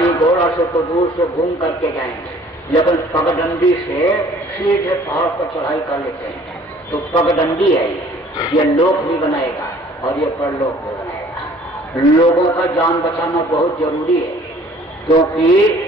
घोड़ा से तो दूर से घूम करके जाएंगे, लेकिन पगडंडी से सीधे पहाड़ पर चढ़ाई कर लेते हैं। तो पगडंडी है ये लोक भी बनाएगा और ये परलोक भी बनाएगा। लोगों का जान बचाना बहुत जरूरी है, क्योंकि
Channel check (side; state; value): both; normal; correlation 0.54